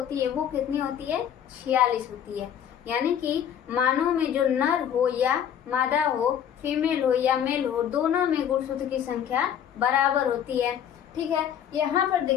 है वो कितनी होती है? 46 होती है। यानी कि मानव में जो नर हो या मादा हो, फीमेल हो या मेल हो, दोनों में गुणसूत्र की संख्या बराबर होती है। ठीक है। यहाँ पर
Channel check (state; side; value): quieter; right; 9.3 dB